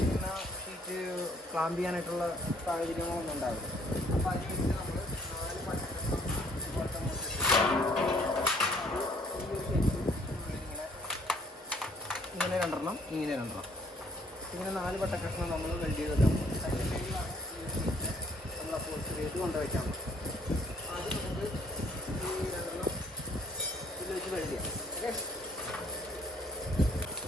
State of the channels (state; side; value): normal; both; correlation 0.62